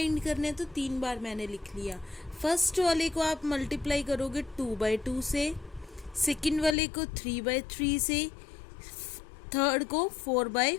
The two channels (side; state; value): right; drops out; at 6.8 s